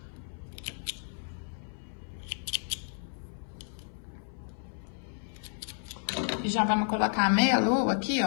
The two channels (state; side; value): silent; right; 56 dB below the other